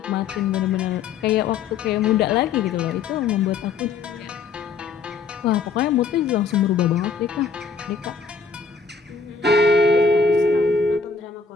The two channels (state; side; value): quieter; right; 5.0 dB